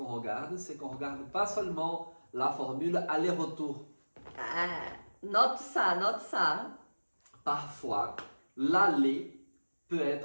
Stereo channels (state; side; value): inverted; both; correlation -1.00